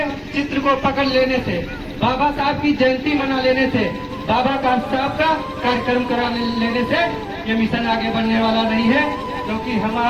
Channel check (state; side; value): identical; both; correlation 1.00